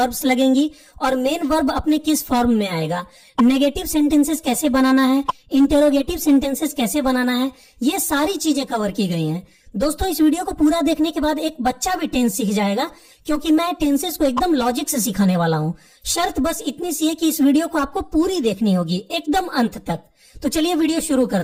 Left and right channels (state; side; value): identical; both; correlation 1.00